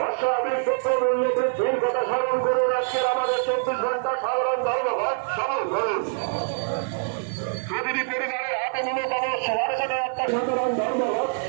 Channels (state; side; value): silent; left; 62 dB below the other